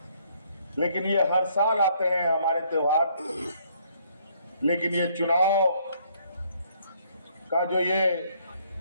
लेकिन ये हर साल आते हैं हमारे त्योहार। लेकिन ये चुनाव का जो ये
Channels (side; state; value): both; inverted; correlation -0.66